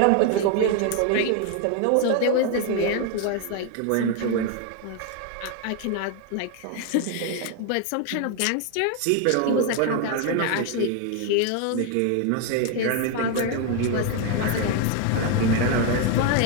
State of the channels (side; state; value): both; different; correlation 0.01